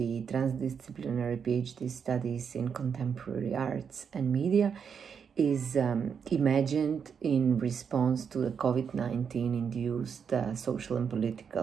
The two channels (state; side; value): quieter; left; 6.8 dB